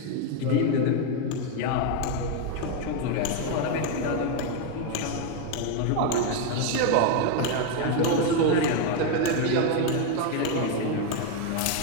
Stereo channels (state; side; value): different; both; correlation 0.01